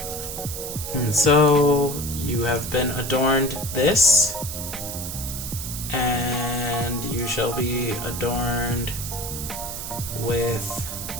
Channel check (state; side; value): noise; right; hiss, 7 dB below the sound